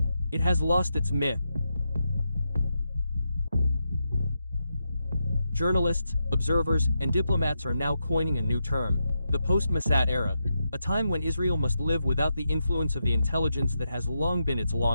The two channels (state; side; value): inverted; both; correlation -0.85